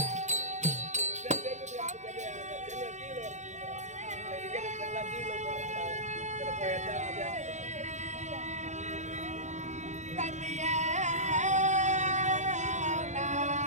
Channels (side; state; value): left; late; 0.34 ms